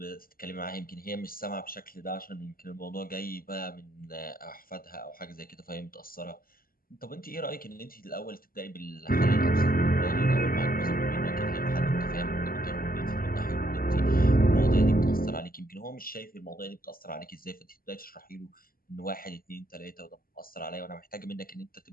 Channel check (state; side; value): late; right; 0.42 ms